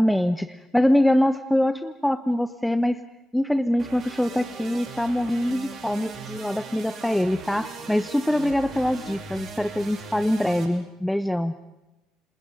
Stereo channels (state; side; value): normal; both; correlation 0.97